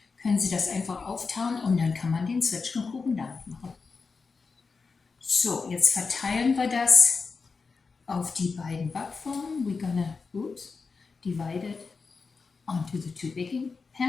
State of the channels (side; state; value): right; quieter; 4.7 dB